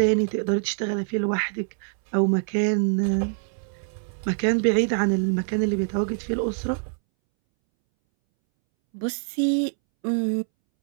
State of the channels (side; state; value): left; silent; 62 dB below the other